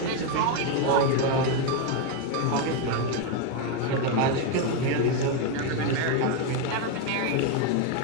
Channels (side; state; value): both; different; correlation 0.02